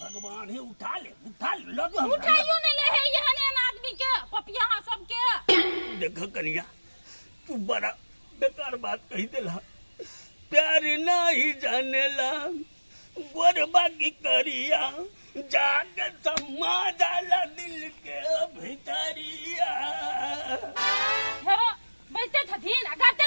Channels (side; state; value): both; inverted; correlation -1.00